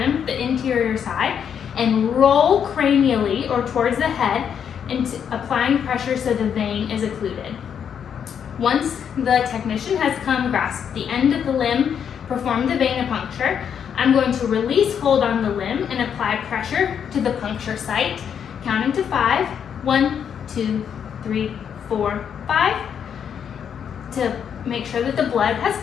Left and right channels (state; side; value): quieter; right; 8.0 dB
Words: the interior side, and roll cranially or towards the head, and applying pressure so the vein is occluded. Once the technician has come, grasp the end of the limb, perform the venipuncture, I'm going to release hold on the limb and apply pressure to the puncture site, counting to 5. 1, 2, 3, 4, 5, to make sure that the blood has